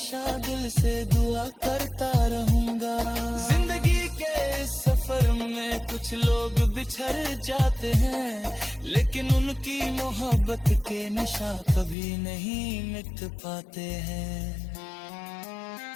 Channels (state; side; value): drops out; right; at 12.0 s